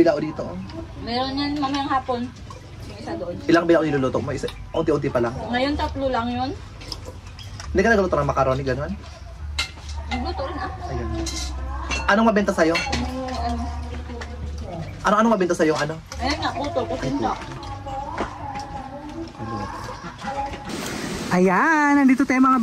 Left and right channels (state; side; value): identical; both; correlation 1.00